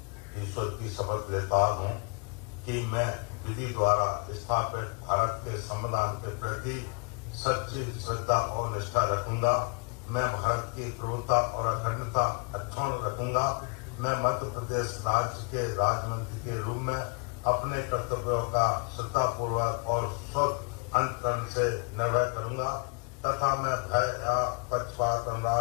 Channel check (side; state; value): right; quieter; 37.6 dB